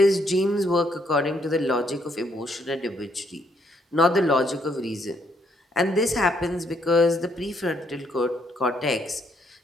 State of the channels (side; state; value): both; normal; correlation 0.72